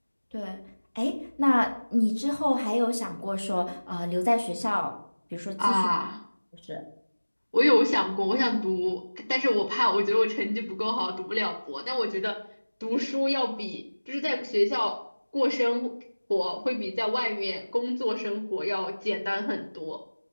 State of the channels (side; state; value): both; inverted; correlation -1.00